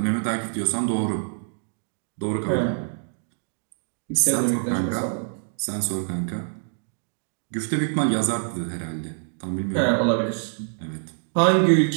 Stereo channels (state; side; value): silent; left; digital silence